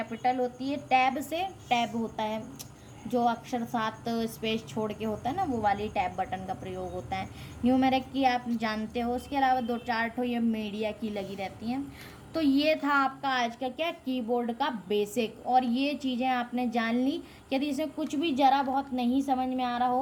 होती है, टैब से टैब होता है, जो अक्षर 7 स्पेस छोड़ के होता है ना, वो वाली टैब बटन का प्रयोग होता है। न्यूमेरिक की आप जानते हो। उसके अलावा 2-4 ठो ये मीडिया की लगी रहती हैं। तो ये था आपका आज का क्या कीबोर्ड का बेसिक, और ये चीज़ें आपने जान ली। यदि इसमें कुछ भी ज़रा बहुत नहीं समझ में आ रहा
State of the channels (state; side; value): identical; both; correlation 1.00